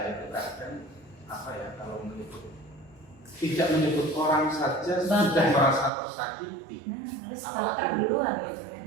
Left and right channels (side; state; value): left; drops out; at 5.9 s